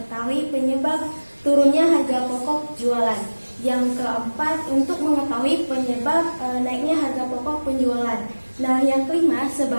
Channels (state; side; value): inverted; both; correlation -1.00